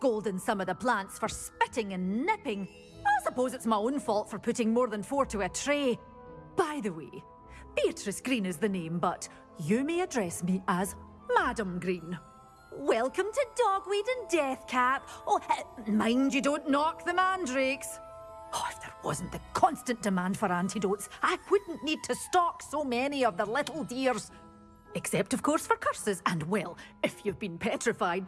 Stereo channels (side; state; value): both; identical; correlation 1.00